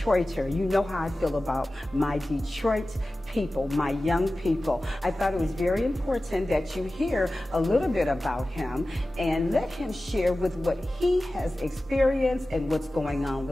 You know how I feel about my Detroit people, my young people. I thought it was very important that you hear a little bit about him and let him share with what he has experienced and what's going on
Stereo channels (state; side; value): normal; both; correlation 0.96